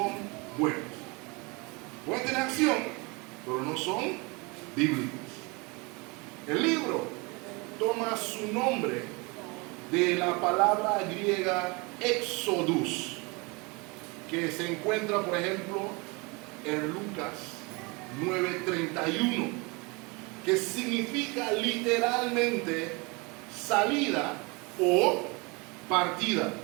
buenas. Pueden tener acción, pero no son bíblicas. El libro toma su nombre de la palabra griega Exodus, que se encuentra, por ejemplo, en Lucas 9:31, que significa literalmente salida o partida.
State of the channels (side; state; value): left; quieter; 27.9 dB